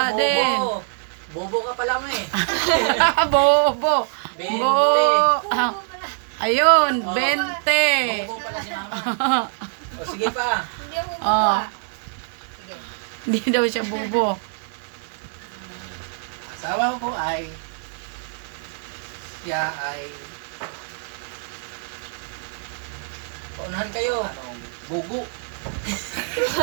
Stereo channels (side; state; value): left; silent; 58 dB below the other